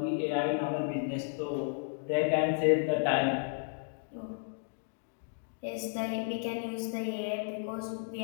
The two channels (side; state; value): right; silent; digital silence